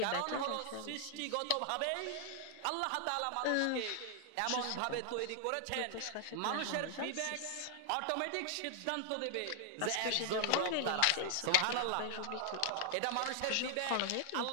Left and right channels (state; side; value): different; both; correlation 0.00